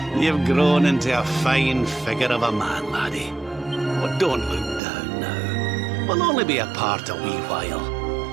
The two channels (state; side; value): drops out; left; at 4.8 s